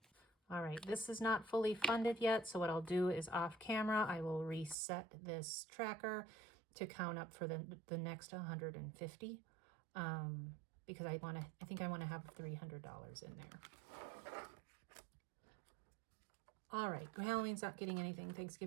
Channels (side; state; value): left; drops out; at 4.8 s